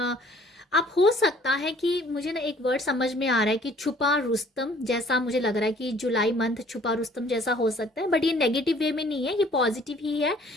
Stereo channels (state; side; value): normal; both; correlation 0.56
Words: आप हो सकता है कि मुझे ना एक वर्ड समझ में आ रहा है कि छुपा रुस्तम जैसा मुझे लग रहा है कि जुलाई मंथ छुपा रुस्तम जैसा हो सकता है, बट ये नेगेटिव वे में नहीं है, ये पॉजिटिव ही है